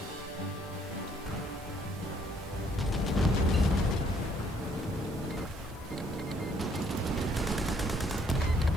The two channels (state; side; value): normal; both; correlation 0.66